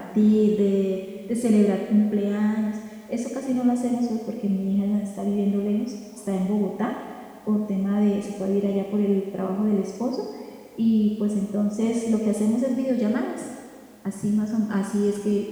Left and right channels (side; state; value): both; identical; correlation 1.00